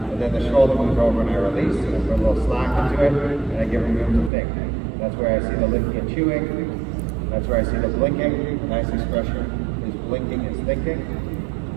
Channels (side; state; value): left; drops out; at 4.3 s